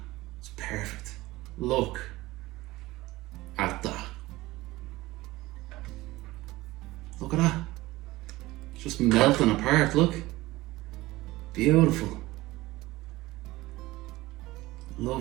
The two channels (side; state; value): left; quieter; 18.9 dB